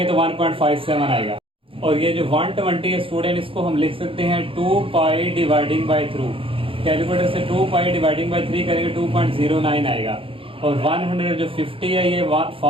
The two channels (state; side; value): late; left; 0.26 ms